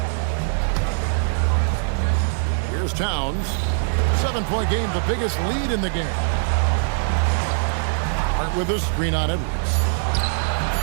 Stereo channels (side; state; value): left; silent; digital silence